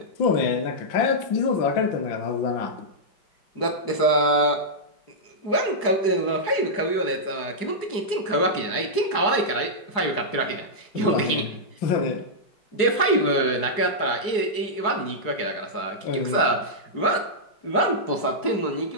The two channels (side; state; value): right; late; 4.8 ms